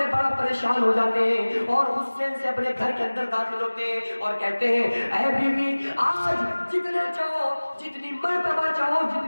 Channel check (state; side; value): inverted; both; correlation -1.00